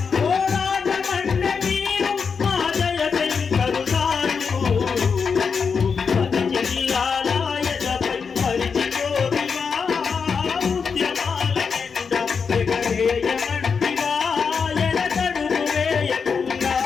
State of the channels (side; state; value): right; quieter; 5.7 dB